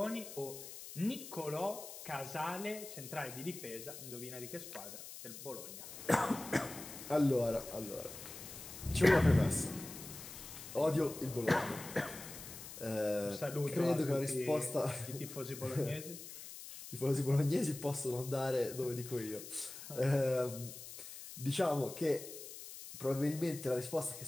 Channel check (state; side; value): noise; left; hiss, 12 dB below the sound